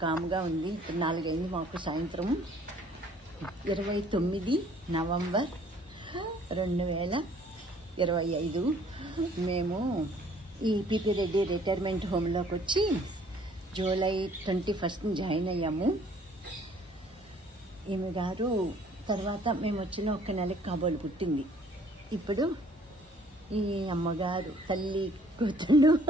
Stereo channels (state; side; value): normal; both; correlation 0.57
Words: కాముగా ఉంది. ఇప్పుడు 4 అయింది మాకు సాయంత్రం. 29 నవంబర్ 2025 మేము ఈ పిపి రెడ్డి రిటైర్మెంట్ హోమ్లోకి వచ్చి జూలై 21 జాయిన్ అయ్యాము. ఈమె గారు తర్వాత మేము వచ్చిన 1 నెలకి కాబోలు పుట్టింది. ఇప్పుడు ఈ అమ్మగారు తల్లి కూతుళ్ళు